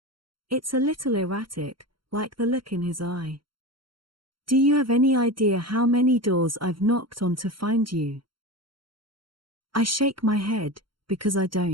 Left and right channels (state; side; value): late; left; 0.73 ms